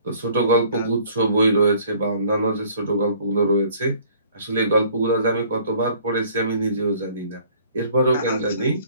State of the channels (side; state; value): both; inverted; correlation -0.56